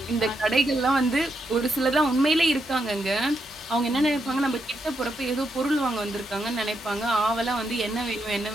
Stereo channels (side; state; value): both; normal; correlation 0.81